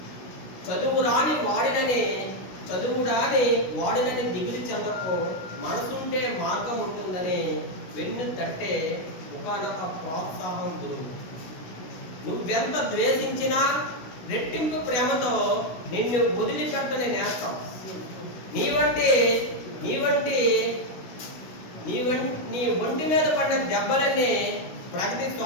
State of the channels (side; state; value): right; late; 16 ms